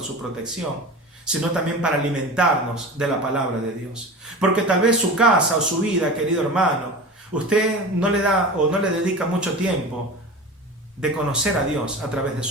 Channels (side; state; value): both; normal; correlation 0.32